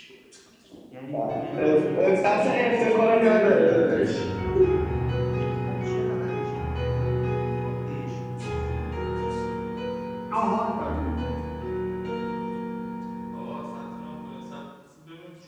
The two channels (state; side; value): identical; both; correlation 1.00